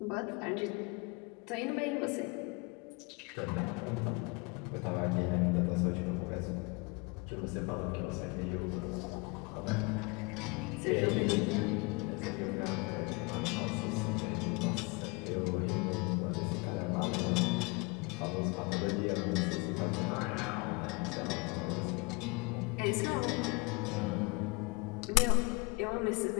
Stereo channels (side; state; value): right; quieter; 28.5 dB